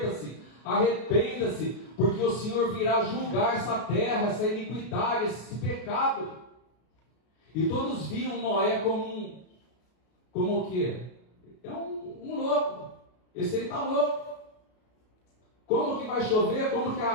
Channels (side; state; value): right; late; 33 ms